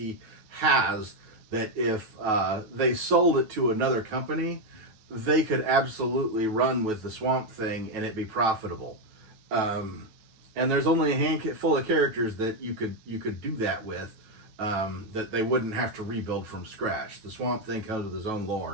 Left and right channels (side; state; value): left; late; 9.2 ms